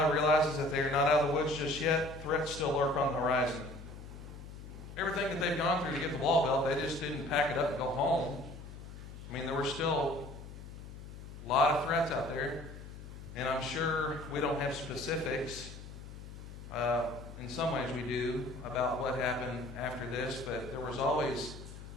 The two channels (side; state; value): left; noise; hum, 13 dB below the sound